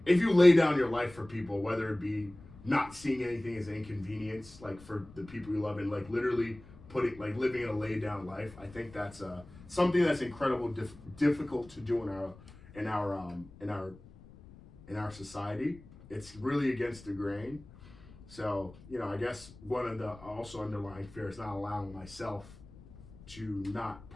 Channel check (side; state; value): left; noise; rumble, 20 dB below the sound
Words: if you lay down your life for people, whether it be not seeing anything as an inconvenience, like for the people you love, and like literally living a laid down life, I think that's something that's incredibly difficult to do in our society. It's really against the grain. So, I guess one of the also underlying fear is not allowing myself to not